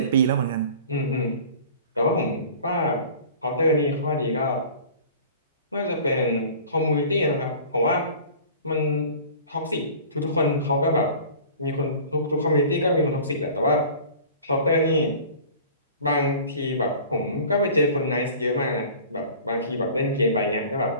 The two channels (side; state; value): both; inverted; correlation -0.43